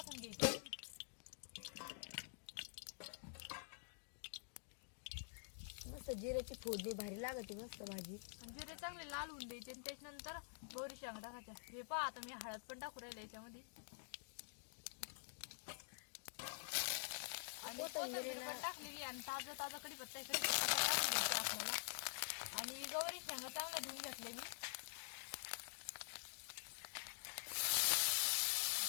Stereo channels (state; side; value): silent; right; digital silence